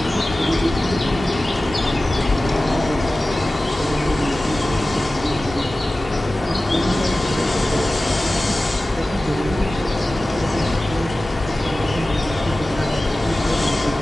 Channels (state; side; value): normal; both; correlation 0.96